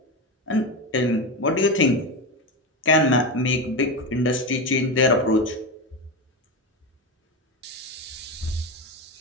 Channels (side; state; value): both; normal; correlation 0.17